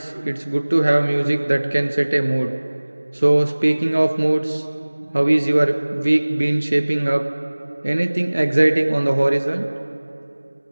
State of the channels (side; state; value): both; inverted; correlation -1.00